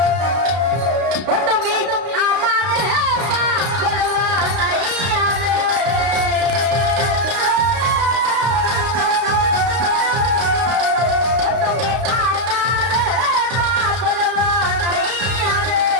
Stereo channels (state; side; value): late; left; 32 ms